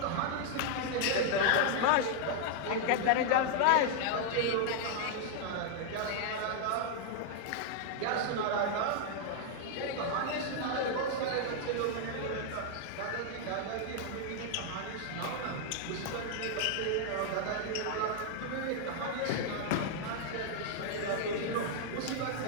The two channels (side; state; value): both; different; correlation 0.00